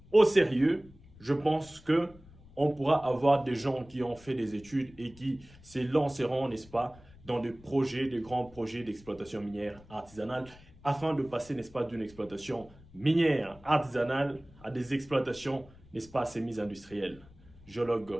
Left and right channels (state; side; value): noise; left; rumble, 23 dB below the sound